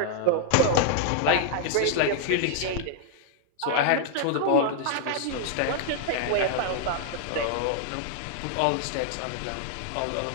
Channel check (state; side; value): different; both; correlation 0.00